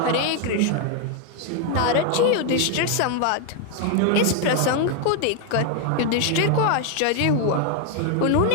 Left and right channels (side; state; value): both; different; correlation 0.00